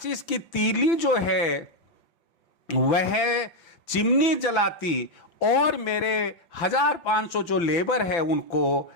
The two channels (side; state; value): right; late; 5.9 ms